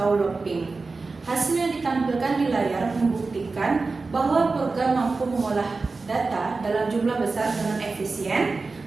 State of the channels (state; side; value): quieter; left; 3.9 dB